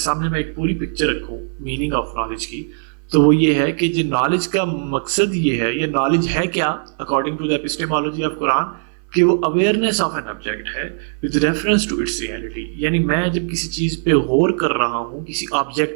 میں ایک پوری پکچر رکھوں میننگ آف نالج کی، تو وہ یہ ہے کہ جو نالج کا مقصد یہ ہے، یہ نالج ہے کیا according to the epistemology of قرآن، کہ وہ اویئرنیس آف این آبجیکٹ ہے with reference to its reality۔ یعنی میں جب کسی چیز پہ غور کر رہا ہوں، کسی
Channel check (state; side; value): silent; left; 58 dB below the other